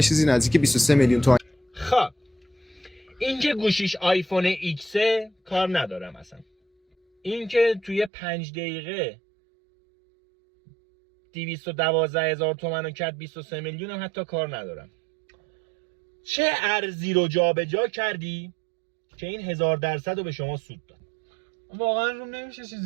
چیزی نزدیک 23 میلیون تومان. خب این که گوشیش آیفون ایکس کار ندارم اصلا. این که توی 5 دقیقه 212,000 تومان رو کرد 23 میلیون هم حتی کار ندارم. چه ارزی رو جابجا کردی که این 1000% رو به شما سود داد؟ واقعا روم نمیشه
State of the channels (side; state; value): left; drops out; at 8.1 s